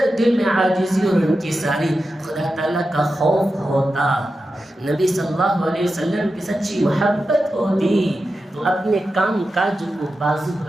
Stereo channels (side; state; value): both; normal; correlation 0.91